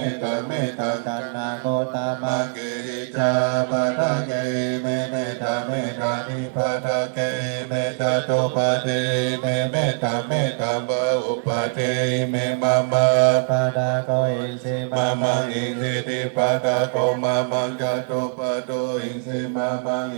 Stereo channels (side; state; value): left; silent; 60 dB below the other